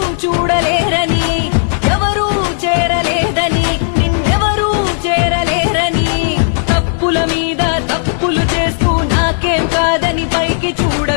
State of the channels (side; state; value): right; silent; 71 dB below the other